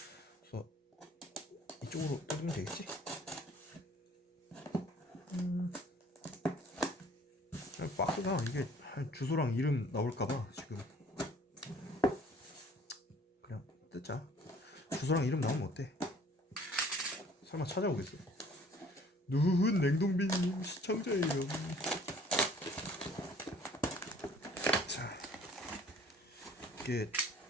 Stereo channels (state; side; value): normal; both; correlation 0.54